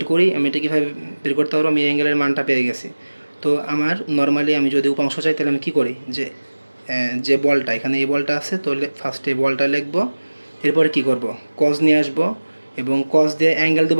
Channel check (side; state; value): both; inverted; correlation -1.00